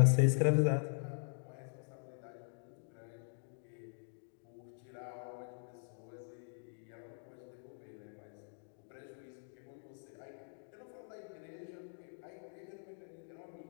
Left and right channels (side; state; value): right; silent; digital silence